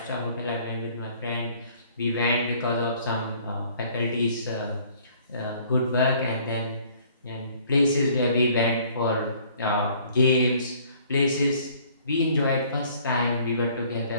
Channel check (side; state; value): both; inverted; correlation -0.57